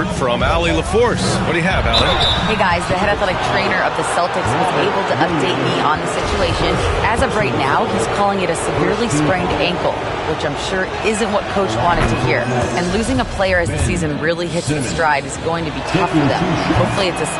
from Allie LaForce. What do you have, Allie? Hey guys, the head athletic trainer of the Celtics was able to update me on the situation. As of right now, he's calling it a severely sprained ankle, which I'm sure isn't what Coach wanted to hear. And losing a player as the season really hits its stride is going to be tough for them. Hopefully it's a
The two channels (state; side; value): identical; both; correlation 1.00